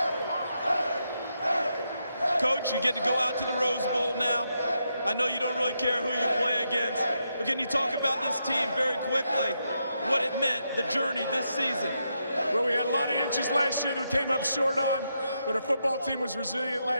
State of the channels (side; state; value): both; inverted; correlation -0.82